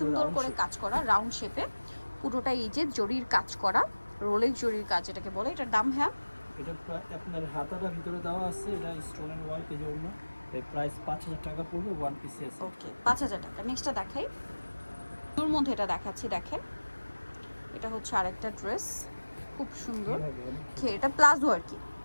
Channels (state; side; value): inverted; both; correlation -1.00